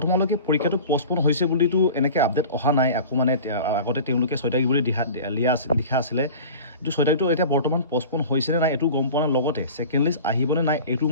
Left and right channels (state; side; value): inverted; both; correlation -0.38